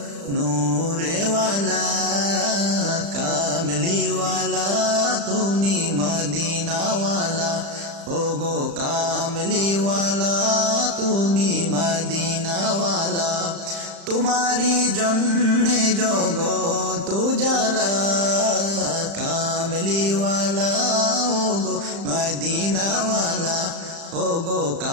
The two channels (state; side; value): late; left; 35 ms